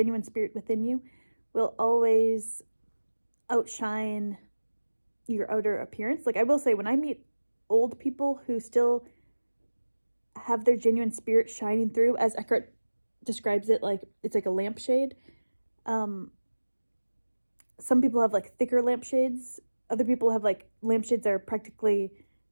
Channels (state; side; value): inverted; both; correlation -1.00